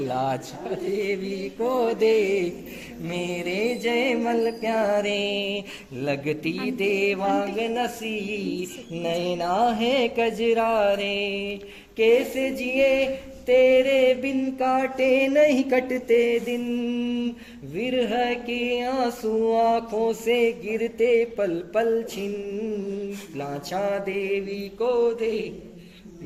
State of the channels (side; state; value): both; identical; correlation 1.00